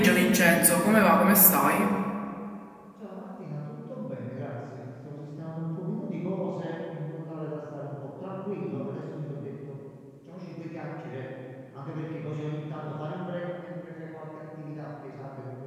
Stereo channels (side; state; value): both; identical; correlation 1.00